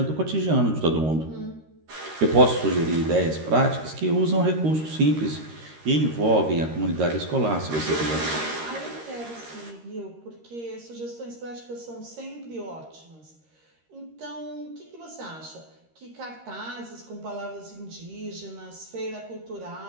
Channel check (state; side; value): late; left; 13 ms